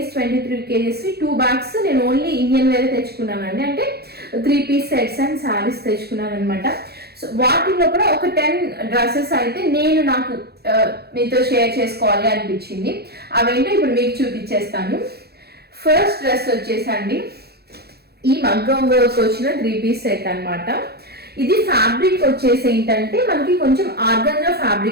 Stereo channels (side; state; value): left; late; 0.46 ms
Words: 2 bags నేను ఓన్లీ ఇండియన్ వేర్ తెచ్చుకున్నానండి. అంటే 3 piece సెట్స్ అండ్ శారీస్ తెచ్చుకున్నాను అనమాట. సో వాటిలో కూడా ఒక 10 డ్రెస్సెస్ అయితే నాకు మీతో షేర్ చేసుకోవాలి అనిపించింది. అవేంటో ఇప్పుడు మీకు చూపించేస్తాను. ఫస్ట్ డ్రెస్ వచ్చేసండి ఈ మగ్గం వర్క్ వచ్చిన 3 piece సెట్ అనమాట. ఇది ఫ్యాబ్రిక్ వచ్చేసి ఏంటంటే మనకి కొంచెం ఆర్గంజా